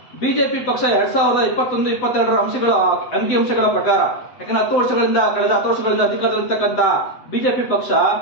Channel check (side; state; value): right; late; 8.0 ms